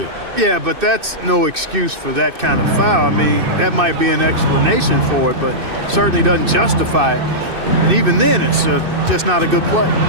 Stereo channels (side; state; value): left; late; 2.6 ms